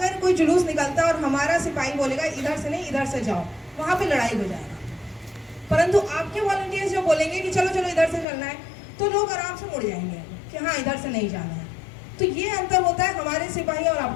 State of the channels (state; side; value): drops out; right; at 8.2 s